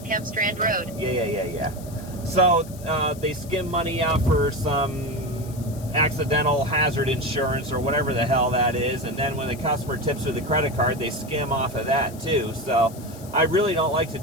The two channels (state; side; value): noise; left; hiss, 19 dB below the sound